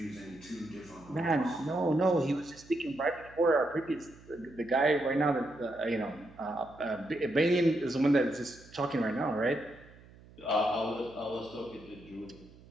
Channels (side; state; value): right; noise; hum, 23 dB below the sound